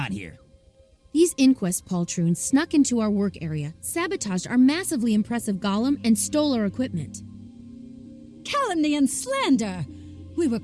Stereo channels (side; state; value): both; identical; correlation 1.00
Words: here? These Inquest poltroons snuck into our work area, sabotaged our massively impressive golem, and stole our equipment. Calumny and slander! We were